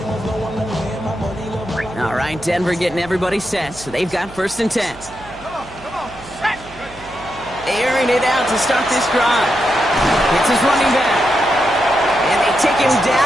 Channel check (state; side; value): noise; right; hum, 19 dB below the sound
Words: All right, Denver getting everybody set. So they've got 1st and 10. Airing it out to start this drive. It's his running back. And they take him